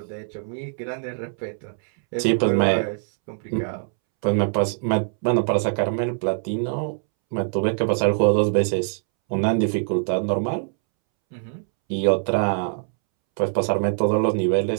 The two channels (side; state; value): left; silent; 63 dB below the other